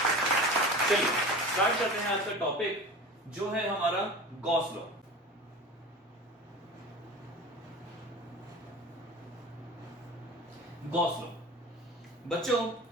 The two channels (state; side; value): normal; both; correlation 0.35